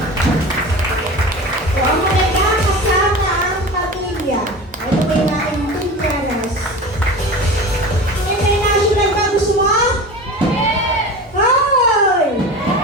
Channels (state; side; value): normal; both; correlation 0.32